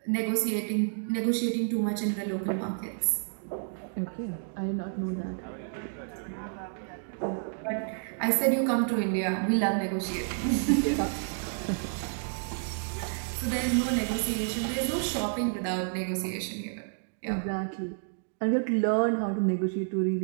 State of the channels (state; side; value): silent; left; digital silence